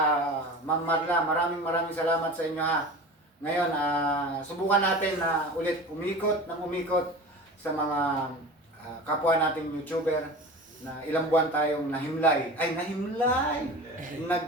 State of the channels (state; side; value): normal; both; correlation 0.34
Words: Ma'am Marla, maraming salamat sa inyo ha. Ngayon, subukan natin na ulit umikot sa mga kapwa nating YouTuber na ilang buwan tayong nahimlay. Ay, nahimlay!